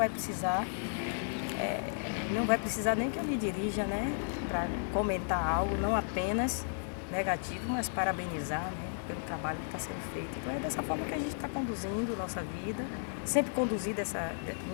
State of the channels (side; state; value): right; silent; digital silence